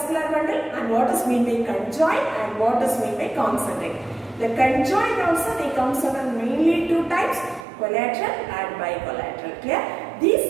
bundle, and what is mean by conjoint, and what is mean by concentric? The conjoint also they comes under mainly two types, collateral and bicollateral. Clear?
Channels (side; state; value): left; drops out; at 7.7 s